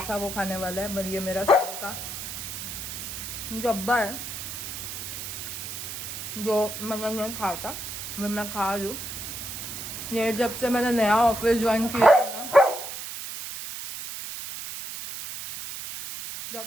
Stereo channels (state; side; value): noise; right; hiss, 7 dB below the sound